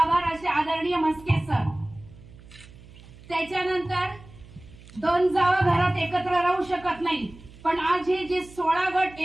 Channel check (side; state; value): right; noise; hum, 21 dB below the sound